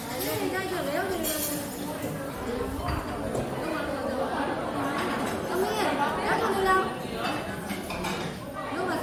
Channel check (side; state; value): both; identical; correlation 1.00